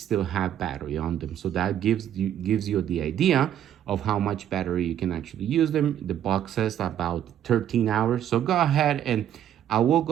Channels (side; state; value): left; quieter; 10.5 dB